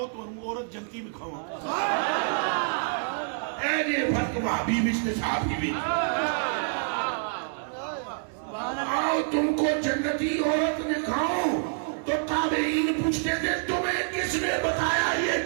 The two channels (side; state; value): left; silent; digital silence